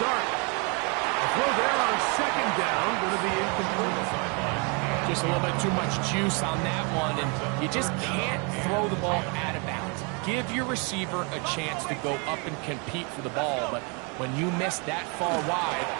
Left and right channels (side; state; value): left; quieter; 33.7 dB